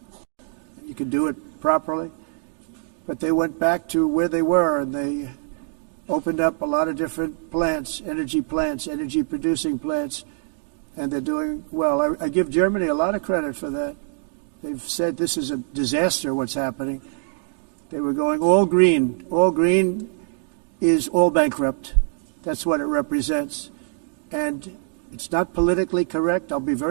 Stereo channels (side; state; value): left; silent; 63 dB below the other